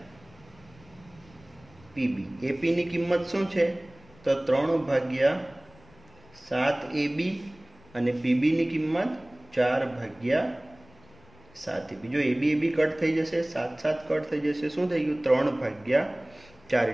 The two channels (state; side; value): noise; left; rumble, 26 dB below the sound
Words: પીબી. એપીની કિંમત શું છે? તો 3/7AB અને પીબીની કિંમત 4/7AB. જો એબી એબી કટ થઈ જશે, 7 કટ થઈ જશે, શું થઈ ગયું? 3/4.